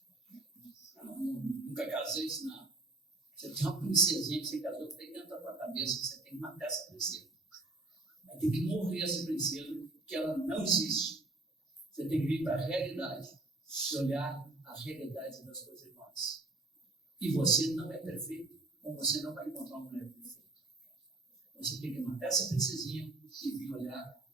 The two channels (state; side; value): quieter; left; 3.0 dB